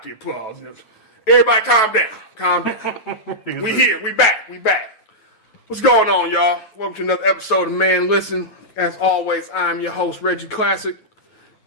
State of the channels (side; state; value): right; late; 9.3 ms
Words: the applause. Everybody, calm down. Calm down. We here. We back. We back. What's going on, y'all? Welcome to another episode of Man Listen. As always, I'm your host, Reggie Classic,